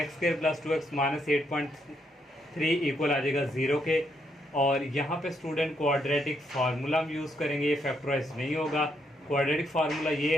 x² + 2x - 8.3 इक्वल आ जाएगा 0 के। और यहाँ पे स्टूडेंट क्वाड्रेटिक फार्मूला हम यूज़ करेंगे, ये फैक्टराइज नहीं होगा। क्वाड्रेटिक फार्मूला ये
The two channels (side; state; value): both; normal; correlation 0.75